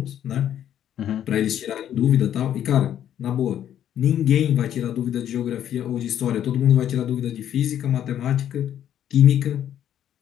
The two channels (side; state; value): right; quieter; 10.5 dB